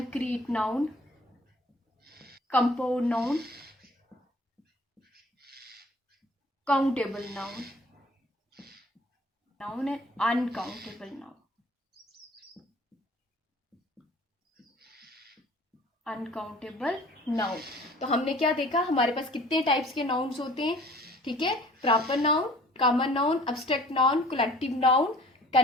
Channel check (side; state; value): both; normal; correlation 0.50